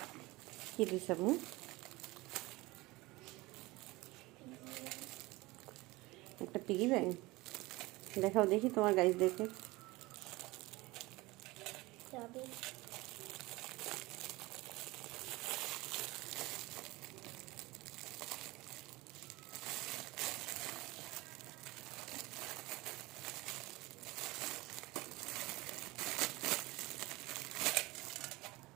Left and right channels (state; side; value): quieter; left; 21.4 dB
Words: কি দিছে আপু? একটা পিগি ব্যাংক দেখাও দেখি তোমার গাইস দেখে। চাবি।